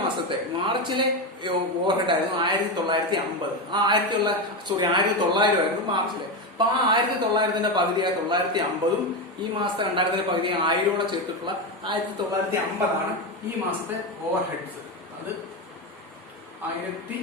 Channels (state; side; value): normal; both; correlation 0.14